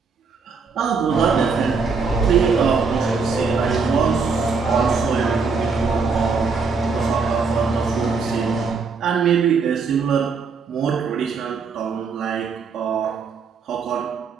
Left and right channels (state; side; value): quieter; left; 5.0 dB